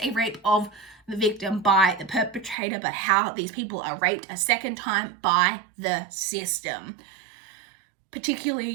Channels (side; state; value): left; drops out; at 2.6 s